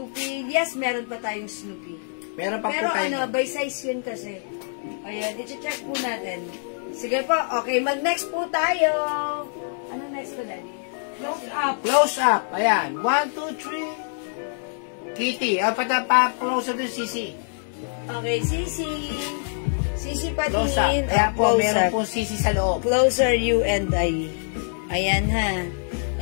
Yes, meron pa tayong Snoopy. Meron pa Pero po tayo. by size yun kasi. Ayan, i-check po natin. Sige po. Okay, mag-next po tayo. Ano next ko, Daddy? Close up. Close up. Ayan. 1, 2, 3. Kitty. Pa-close up yung CC. Okay, Sisi. Sisi Close up. patingin. Ayan po, Close meron up. po CC sa loob. Closer you and I. Ayan ha.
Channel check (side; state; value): right; silent; digital silence